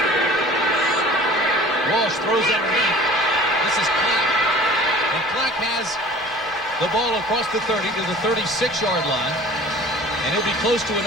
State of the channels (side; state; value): both; normal; correlation 0.45